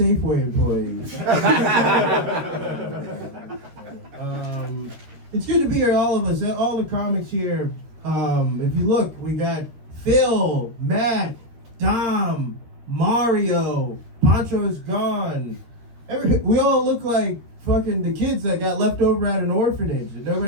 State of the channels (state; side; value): late; left; 13 ms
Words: employee. It's good to be here, all of us, all the comics here. If you look, we got Phil, Matt, Dom, Mario, Pancho is gone. We all look like fucking the kids that got left over at an orphanage and